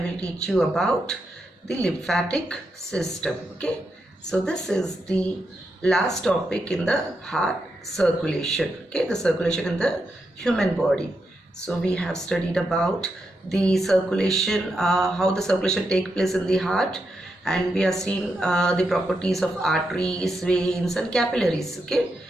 teach you about the lymphatic system. Okay, so this is the last topic in the heart circulation. Okay, the circulation in the human body. So we have studied about the circulation, how the circulation take place in the heart, and we have seen the properties of arteries, veins and capillaries. Okay,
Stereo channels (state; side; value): normal; both; correlation 0.84